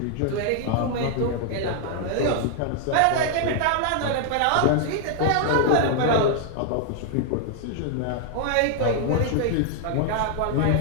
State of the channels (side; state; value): both; different; correlation 0.00